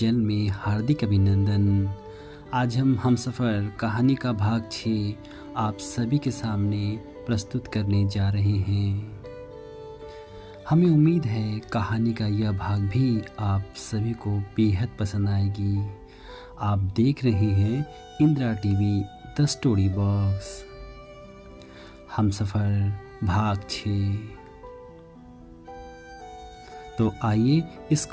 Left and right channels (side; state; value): both; identical; correlation 1.00